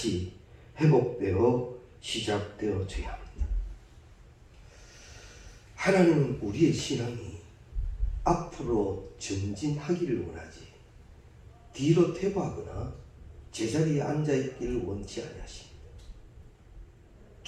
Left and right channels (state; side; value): identical; both; correlation 1.00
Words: 회복되어 시작되어져야 합니다. 하나님은 우리의 신앙이 앞으로 전진하기를 원하지 뒤로 퇴보하거나 제자리에 앉아있기를 원치 아니하십니다.